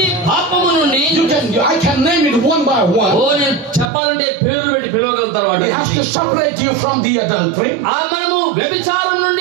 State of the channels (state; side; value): drops out; left; at 3.9 s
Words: పాపము నుండి. I can name it one by one. నేను చెప్పాలంటే పేరు పెట్టి పిలవగలుగుతారు వాడు. He has to separate you from the adultery. మనము వ్యభిచారం